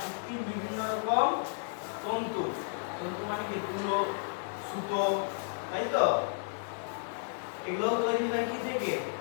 বিভিন্ন রকম তন্তু, তন্তু মানে কি? তুলো, সুতো, তাই তো? এগুলো তৈরি হয় কি থেকে?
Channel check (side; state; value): right; silent; digital silence